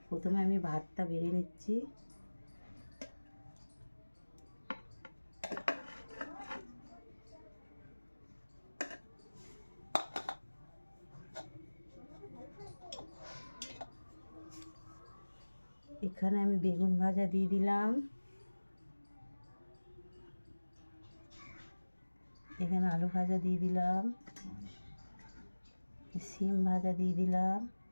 প্রথমে আমি ভাতটা বেড়ে নিচ্ছি। এখানে আমি বেগুন ভাজা দিয়ে দিলাম, এখানে আলু ভাজা দিয়ে দিলাম, সিম ভাজা দিয়ে দিলাম,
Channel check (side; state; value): both; inverted; correlation -1.00